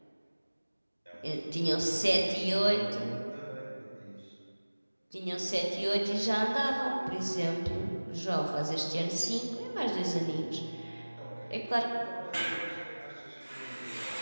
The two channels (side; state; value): both; inverted; correlation -1.00